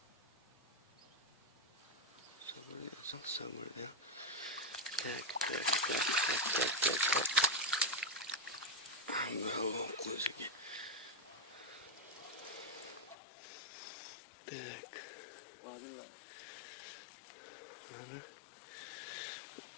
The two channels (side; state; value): right; drops out; at 13.2 s